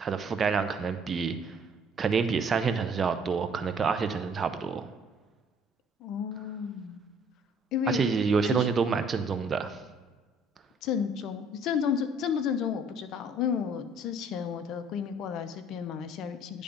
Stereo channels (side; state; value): both; normal; correlation 0.59